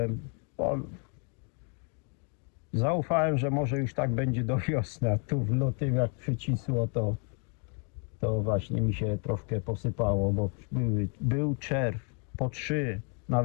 Zaufałem, że może już tak będzie do wiosny, a tu w lutym jak przycisło, to właśnie mi się troszkę posypało, bo był czerw, po 3,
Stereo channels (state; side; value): quieter; right; 39.7 dB